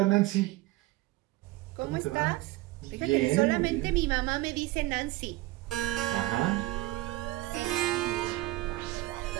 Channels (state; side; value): quieter; left; 18.6 dB